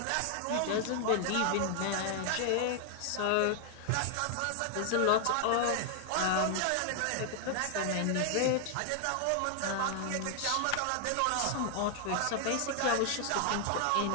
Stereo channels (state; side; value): different; both; correlation 0.00